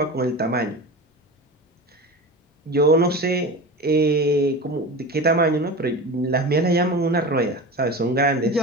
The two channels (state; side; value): normal; both; correlation 0.30